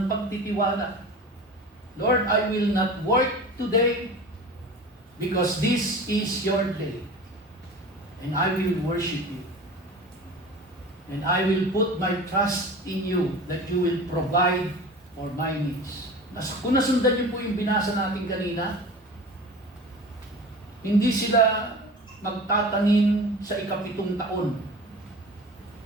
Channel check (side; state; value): both; normal; correlation 0.36